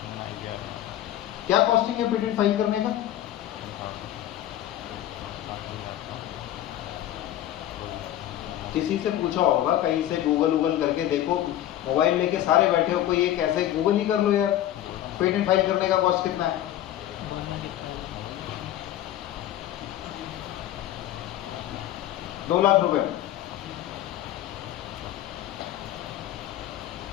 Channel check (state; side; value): quieter; right; 12.6 dB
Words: क्या कॉस्टिंग है पेटेंट फाइल करने का? किसी से पूछा होगा, कहीं से गूगल करके देखो, मोबाइल लेके सारे बैठे हो, कोई एक ऐसे गूगल ही कर लो यार, पेटेंट फाइल करने का कॉस्ट कितना है? ₹2 लाख